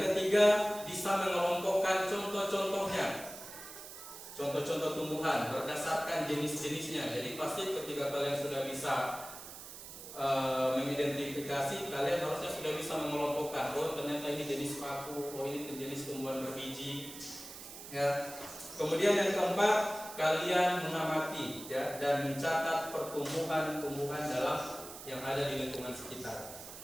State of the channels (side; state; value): right; noise; hiss, 13 dB below the sound